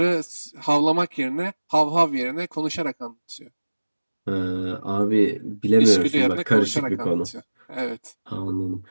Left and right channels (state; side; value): inverted; both; correlation -1.00